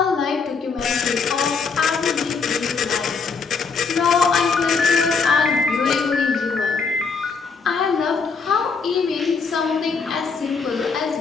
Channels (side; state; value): right; quieter; 5.1 dB